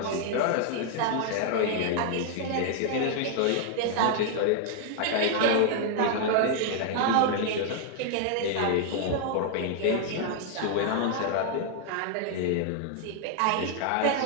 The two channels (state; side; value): different; both; correlation 0.00